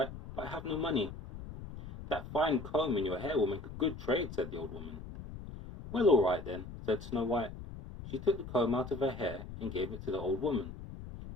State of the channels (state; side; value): noise; left; rumble, 12 dB below the sound